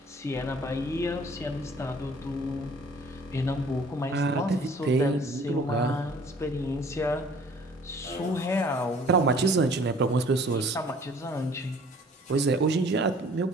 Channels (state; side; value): normal; both; correlation 0.53